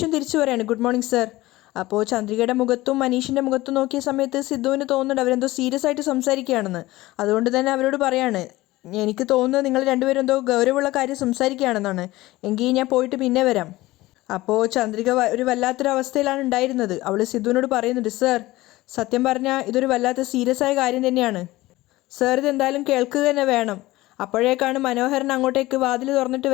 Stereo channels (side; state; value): right; quieter; 18.3 dB